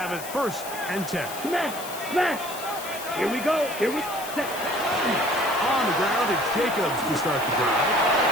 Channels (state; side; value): noise; left; hiss, 12 dB below the sound